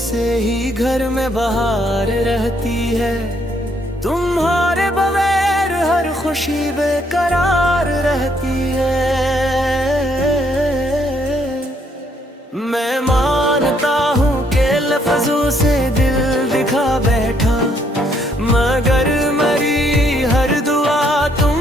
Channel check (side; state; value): both; normal; correlation 0.70